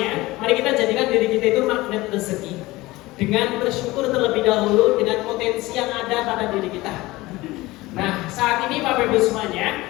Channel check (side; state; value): right; quieter; 19.8 dB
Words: mari kita jadikan diri kita itu magnet rezeki dengan bersyukur terlebih dahulu dengan potensi yang ada pada diri kita. Nah, saat ini Bapak Ibu